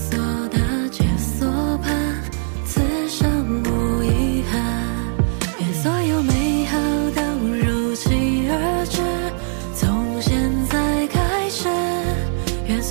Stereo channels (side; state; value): left; silent; digital silence